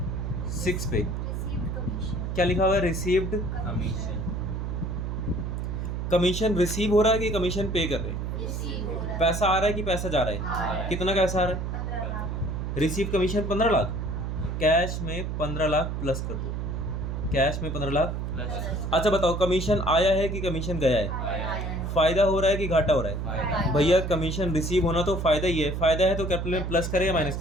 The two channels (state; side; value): noise; right; hum, 3 dB below the sound